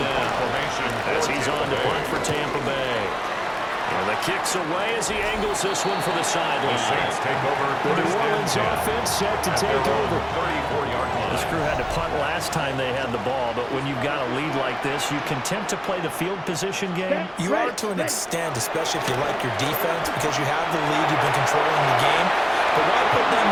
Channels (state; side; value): identical; both; correlation 1.00